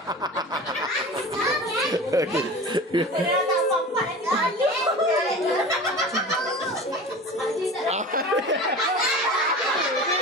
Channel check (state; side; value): normal; both; correlation 0.35